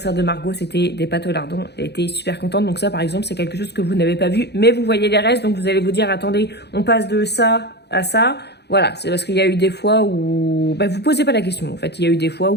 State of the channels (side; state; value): right; late; 0.49 ms